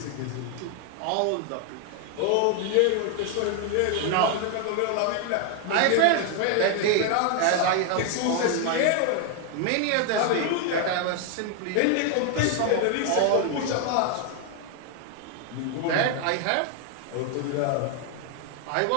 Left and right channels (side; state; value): both; different; correlation 0.00